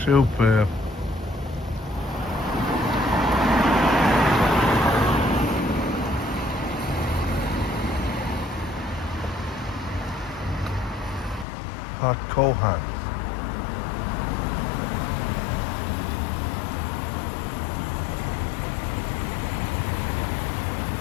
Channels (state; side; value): drops out; right; at 11.5 s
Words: Superb. At Cohan.